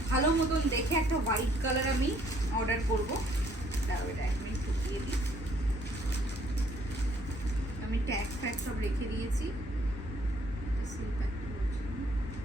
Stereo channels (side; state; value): both; normal; correlation 0.63